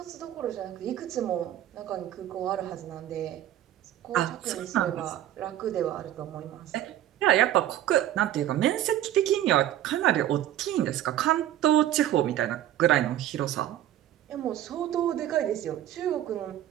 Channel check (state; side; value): quieter; left; 12.5 dB